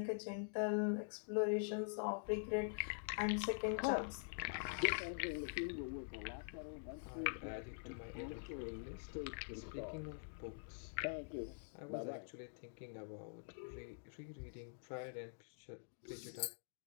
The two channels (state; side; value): silent; right; digital silence